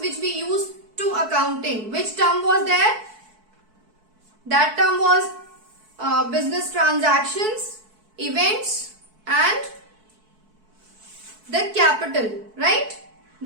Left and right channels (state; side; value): late; left; 4.6 ms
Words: which we use to accounting. Which term was there? That term was business transactions, events, and the capital, right?